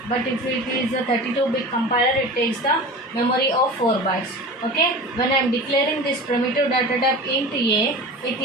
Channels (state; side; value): normal; both; correlation 0.34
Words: but if it is a 32-bit compiler, it takes the memory of 4 bytes. Okay, when I am declaring this primitive data type int a, it